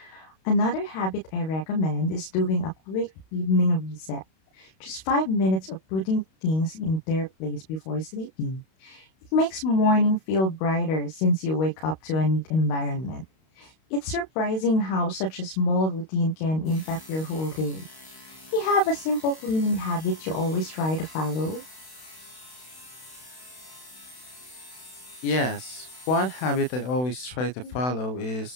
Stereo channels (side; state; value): right; late; 32 ms